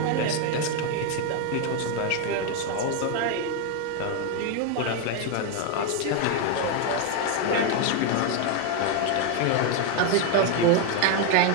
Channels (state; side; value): different; both; correlation 0.01